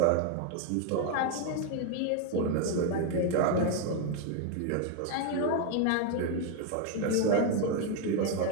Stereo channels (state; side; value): different; both; correlation 0.01